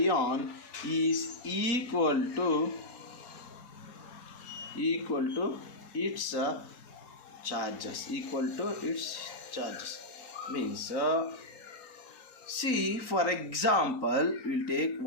is equal to its charges. Means see, for example, we'll take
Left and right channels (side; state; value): right; late; 4.3 ms